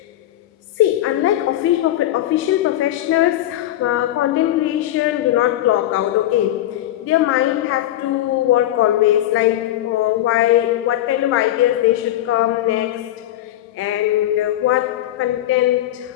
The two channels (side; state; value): right; quieter; 13.7 dB